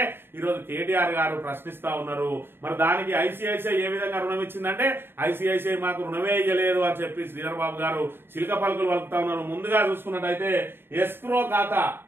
ఈరోజు కేటీఆర్ గారు ప్రశ్నిస్తా ఉన్నారు. మరి దానికి ఐసిఐసిఐ ఏ విధంగా రుణం ఇచ్చిందంటే, ఐసిఐసిఐ మాకు రుణమే ఇయ్యలేదు అని చెప్పి శ్రీధర్ బాబు గారు చిలక పలుకులు వలుకుతా ఉన్నారు. ముందుగా చూసుకున్నట్టయితే ఎస్క్రో ఖాతా,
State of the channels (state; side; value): late; left; 0.11 ms